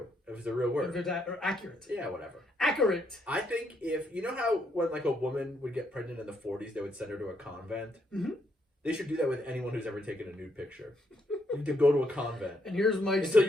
If it's a real word. If it's accurate. Yeah, whatever. Accurate. I think you know how when like a woman would get pregnant in the 40s, they would send her to a convent? Mm-hmm. They should do that with anyone who's ever taken a nude picture. You need to go to a convent. And here's my until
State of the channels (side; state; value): both; normal; correlation 0.75